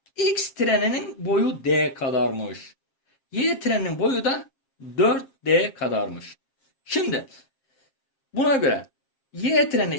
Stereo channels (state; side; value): late; right; 7.4 ms